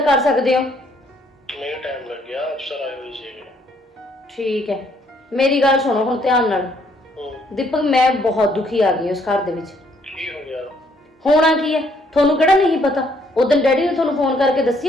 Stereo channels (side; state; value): both; normal; correlation 0.67